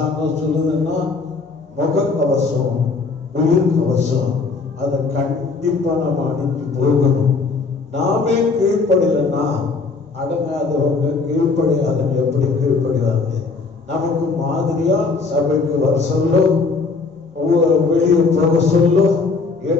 சொல்லுதுன்னா முகக்கவசம் உயிர் கவசம் அதை கண்டிப்பா நம்ம அணிஞ்சு போகணும். நாமே கீழ்ப்படியலன்னா அடங்காதவங்க கீழ்ப்படியாதவங்க எப்படி கீழ்ப்படிவாங்க? நமக்கு மாதிரியா சபைக்கு வர சொல்லோ வெளியே போக சொல்லோ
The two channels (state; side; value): quieter; right; 4.3 dB